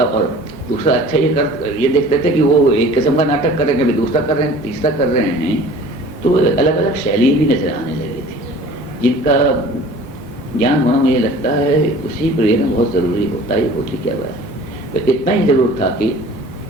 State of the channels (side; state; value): both; normal; correlation 0.46